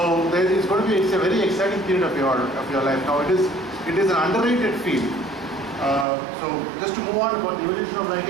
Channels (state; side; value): drops out; left; at 6.1 s